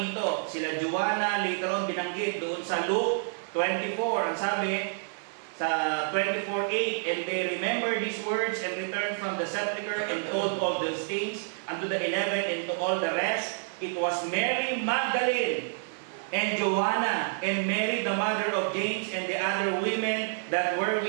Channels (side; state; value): left; silent; digital silence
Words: Sila Joanna, later on binanggit doon sa Luke 24. Ang sabi sa 24:8, and they remember these words and returned from the sepulchre and told all those things unto the 11 and to all the rest. It was Mary Magdalene and Joanna, and Mary the mother of James, and the other women that were